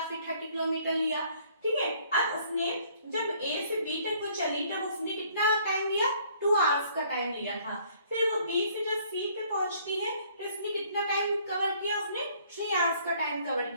फिर 30 किलोमीटर लिया, ठीक है। अब उसने जब ए से बी तक वो चली तब उसने कितना टाइम लिया, 2 आवर्स का टाइम लिया था। फिर वो बी से जब सी पे पहुंचती है तो उसने कितना टाइम कवर किया, उसने 3 आवर्स का टाइम कवर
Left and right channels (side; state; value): both; inverted; correlation -0.61